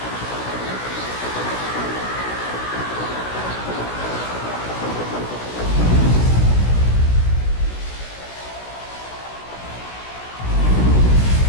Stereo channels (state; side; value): late; right; 16 ms